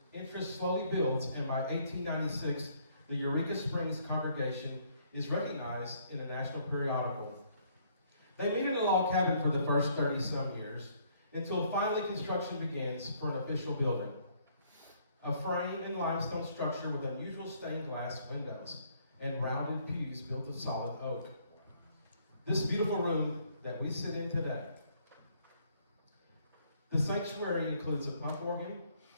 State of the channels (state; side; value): inverted; both; correlation -0.66